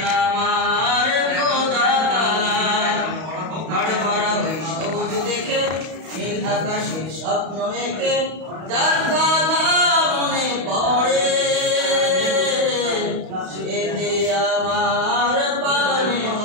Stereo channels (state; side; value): late; left; 31 ms